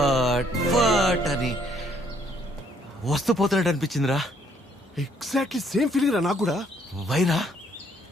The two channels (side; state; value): both; normal; correlation 0.67